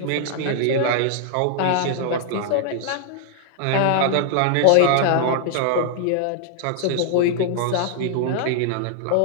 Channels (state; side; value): different; both; correlation -0.01